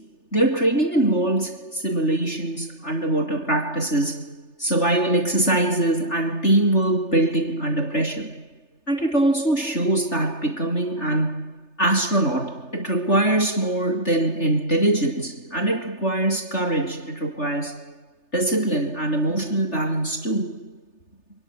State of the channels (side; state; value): right; late; 3.3 ms